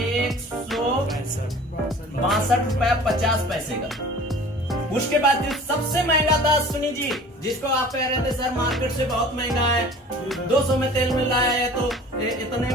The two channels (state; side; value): normal; both; correlation 0.44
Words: रुपया 50 पैसे का। उसके बाद जो सबसे महंगा था अश्विनी जी, जिसको आप कह रहे थे सर मार्केट से बहुत महंगा है, 200 में तेल मिल रहा है तो इतने